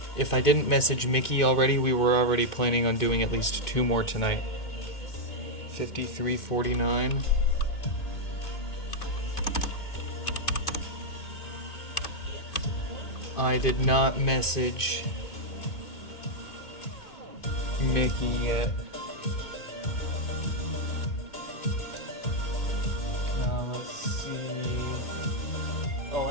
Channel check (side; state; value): right; late; 2.5 ms